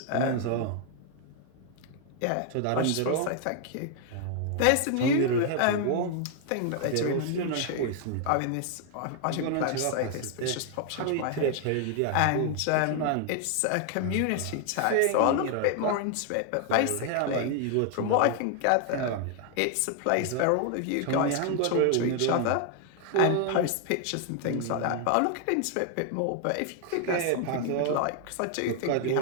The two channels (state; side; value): different; both; correlation 0.00